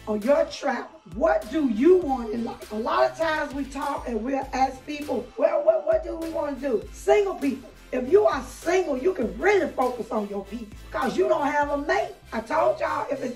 on your travel. What do you want in life? A lot of times we talk and we'll ask people, well, what do we want to do? Single people. If you are single, you can really focus on your peace because you don't have a mate. I told y'all, if it's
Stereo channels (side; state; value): both; identical; correlation 1.00